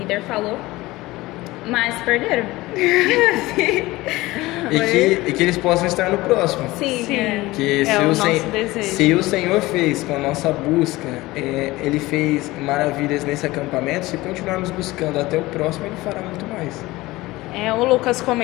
falou, mas perderam. E que eles possam estar no próximo. Sim, Sim. Que É o nosso desejo. se o Senhor fez com a nossa busca, Ele fez maravilhas nesse acampamento, se continuarmos buscando até o próximo, Ele fará muito mais. O Lucas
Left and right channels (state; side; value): quieter; right; 19.4 dB